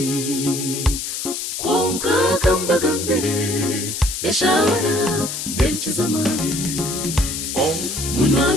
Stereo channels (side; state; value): left; noise; hiss, 5 dB below the sound